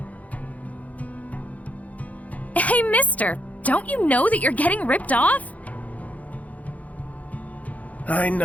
Hey, mister, don't you know that you're getting ripped off? I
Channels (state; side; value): late; right; 0.071 ms